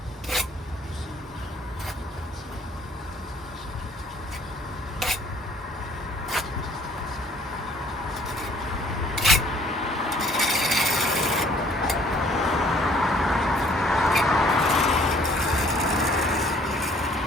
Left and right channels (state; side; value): normal; both; correlation 0.59